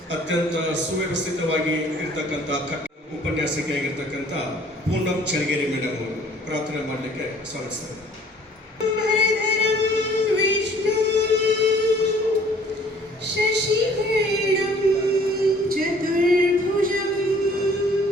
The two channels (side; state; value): both; normal; correlation 0.55